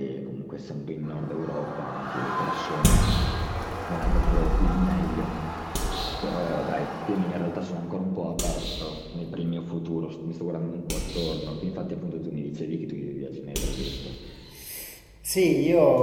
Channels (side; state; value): both; identical; correlation 1.00